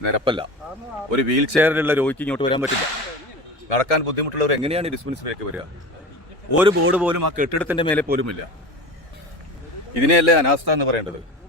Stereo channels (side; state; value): both; normal; correlation 0.31